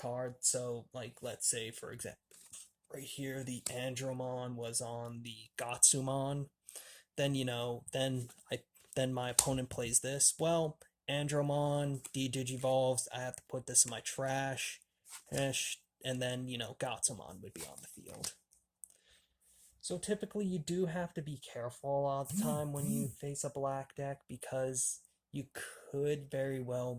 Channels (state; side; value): identical; both; correlation 1.00